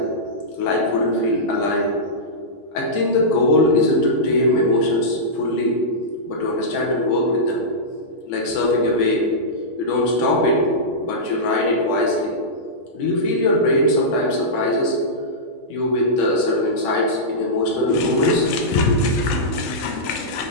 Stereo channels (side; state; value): both; normal; correlation -0.14